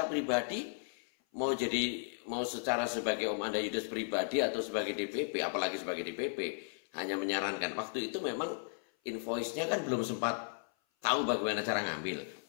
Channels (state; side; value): silent; right; 54 dB below the other